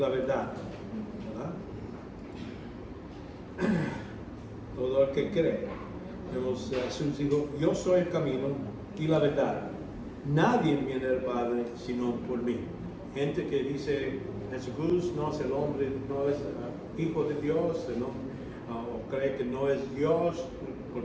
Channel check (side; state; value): both; identical; correlation 1.00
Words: verdad, ¿verdad? Todo el que cree. Jesús dijo, yo soy el camino y la verdad. Nadie viene al Padre sino por mí. Gente que dice, Jesús no es el hombre, no es hijo de Dios, ¿no? O cree que no es Dios,